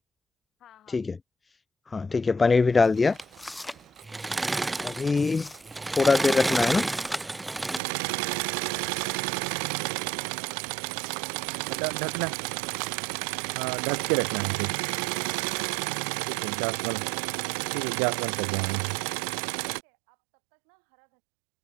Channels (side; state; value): left; drops out; at 7.8 s